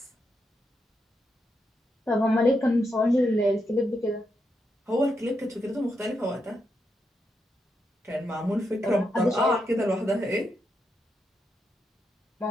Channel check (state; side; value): normal; both; correlation 0.83